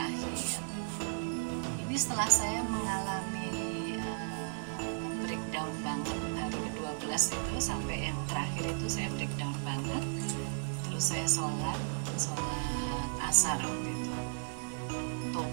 Ini setelah saya mengalami breakdown banget hari ke-12 itu sampai yang terakhir itu saya breakdown banget. Terus saya sholat asar waktu itu.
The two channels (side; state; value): left; silent; digital silence